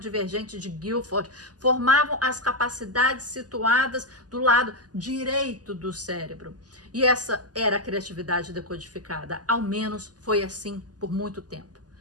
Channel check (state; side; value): late; left; 0.68 ms